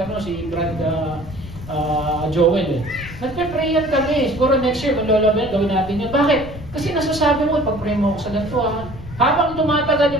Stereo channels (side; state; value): left; noise; rumble, 14 dB below the sound